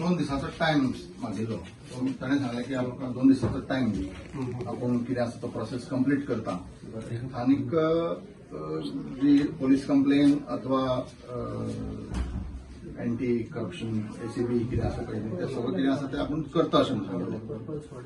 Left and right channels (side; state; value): both; identical; correlation 1.00